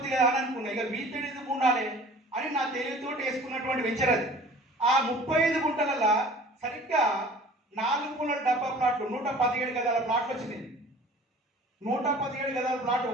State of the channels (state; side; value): normal; both; correlation 0.46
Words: కదా అని అనుకున్నా. ఇక వీటిని ఎందుకు ఉండాలి అని నా తెలివితో వేసుకున్నటువంటి వెంచర్ అది. ఆ 35 గుంటలలో సరిగ్గా 4 మూలల డబ్బా ప్లాట్లు 117 గదాల ప్లాట్లు వచ్చినాయి. 117 గదాల ప్లాట్